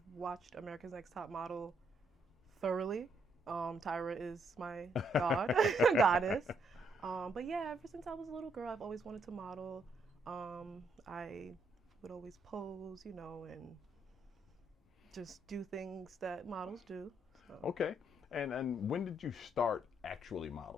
watched America's Next Top Model thoroughly. Tyra is my goddess. But yeah, ever since I was a little girl, I've always wanted to model. I would always pose, and just do things that models do. So, Okay. And when did you start actually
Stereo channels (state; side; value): normal; both; correlation 0.74